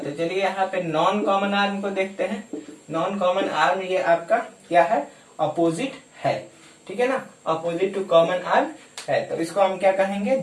चलिए यहाँ पे नॉन कॉमन आर्म को देखते हैं। नॉन कॉमन आर्म ये आपका क्या है, अपोजिट है। ठीक है ना, अपोजिट टू कॉमन आर्म है, तो इसको हम क्या कहेंगे,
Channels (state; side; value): identical; both; correlation 1.00